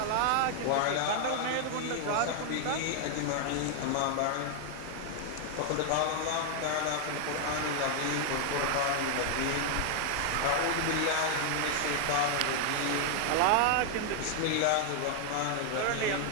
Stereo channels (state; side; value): different; both; correlation 0.00